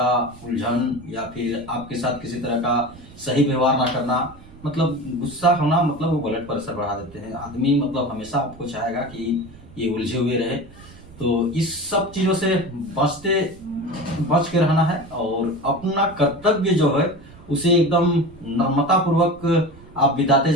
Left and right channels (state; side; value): noise; right; rumble, 21 dB below the sound